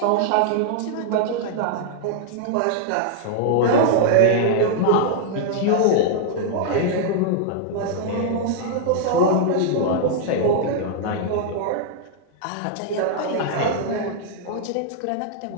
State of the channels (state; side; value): different; both; correlation -0.01